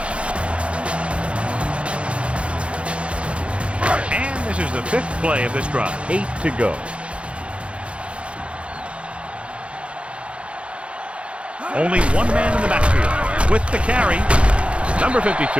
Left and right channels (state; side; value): late; left; 0.060 ms